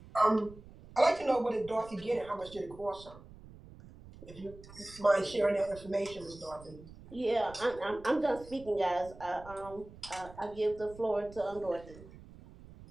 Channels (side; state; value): right; noise; rumble, 18 dB below the sound